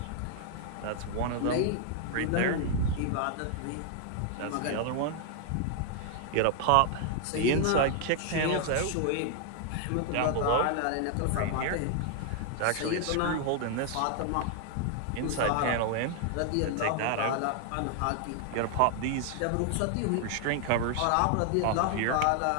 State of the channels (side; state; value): both; different; correlation 0.00